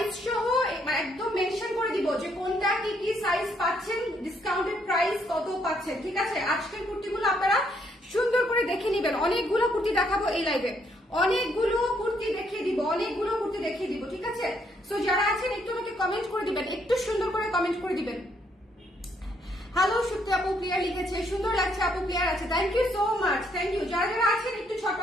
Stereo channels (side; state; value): both; normal; correlation 0.71